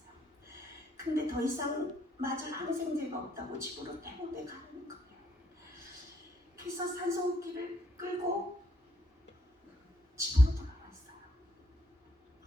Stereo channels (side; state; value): both; normal; correlation 0.71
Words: 근데 더 이상 맞을 항생제가 없다고 집으로 퇴원해 가는 거예요. 그래서 산소호흡기를 끌고 집으로 돌아왔어요.